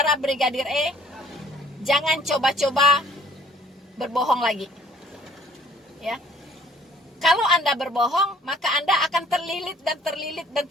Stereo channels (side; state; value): both; normal; correlation 0.56